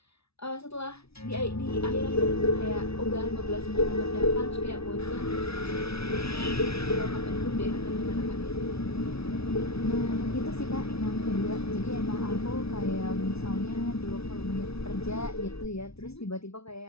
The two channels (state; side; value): late; right; 0.78 ms